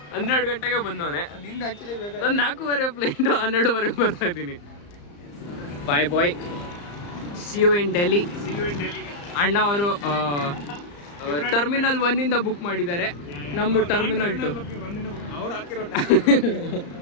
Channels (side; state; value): right; late; 34 ms